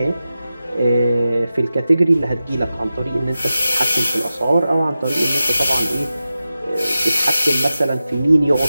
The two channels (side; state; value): both; inverted; correlation -0.93